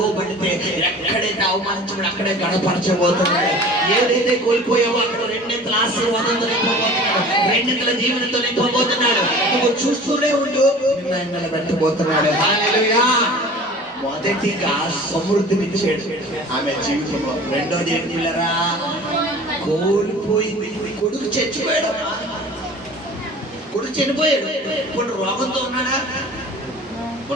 ఎక్కడైతే అవమానించబడి అక్కడే గణపరచబోతున్నాడు. ఏదైతే కోల్పోయావో అక్కడ రెండింతల ఆశీర్వాదంతో నింపబోతున్నాడు, రెండింతల జీవనంతో నింపబోతున్నాడు. నువ్వు చూస్తూనే ఉండు, నిలబెట్టబోతున్నాడు. హల్లెలూయా. మొదటిగా సమృద్ధినిచ్చాడు ఆమె జీవితంలో. రెండోది ఏంటి పిల్లరా? కోల్పోయింది. కొడుకు చచ్చిపోయాడు, కొడుకు చనిపోయాడు. ఇప్పుడు రోగంతో ఉన్నాడా?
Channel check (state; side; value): normal; both; correlation 0.42